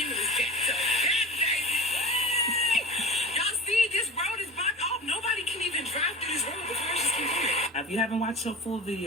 back to back, baby. Y'all see, this road is blocked off. Nobody can even drive through this road. The cars just keep going. If you haven't watched her full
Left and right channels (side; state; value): both; normal; correlation 0.33